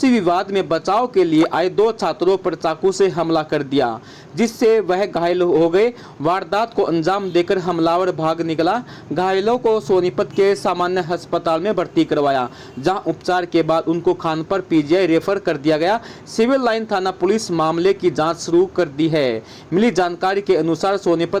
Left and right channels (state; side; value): identical; both; correlation 1.00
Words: विवाद में बचाव के लिए आए दो छात्रों पर चाकू से हमला कर दिया, जिससे वह घायल हो गए। वारदात को अंजाम देकर हमलावर भाग निकला। घायलों को सोनीपत के सामान्य अस्पताल में भर्ती करवाया, जहां उपचार के बाद उनको खानपुर पीजीआई रेफर कर दिया गया। सिविल लाइन थाना पुलिस मामले की जांच शुरू कर दी है। मिली जानकारी के अनुसार